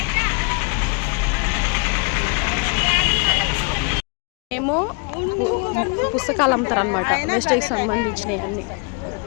ఏమో పుస్తకాలు అమ్ముతారు అనమాట, వెస్టేజ్కి సంబంధించినవి అన్నీ.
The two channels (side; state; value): right; quieter; 36.5 dB